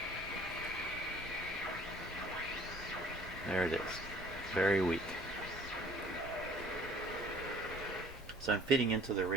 There it is. Very weak. So I'm feeding into the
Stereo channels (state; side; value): normal; both; correlation 0.53